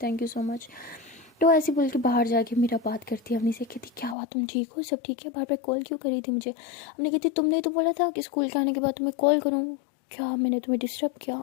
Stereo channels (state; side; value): drops out; right; at 4.2 s